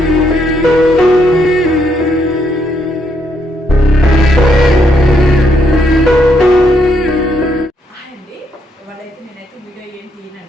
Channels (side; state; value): both; normal; correlation 0.75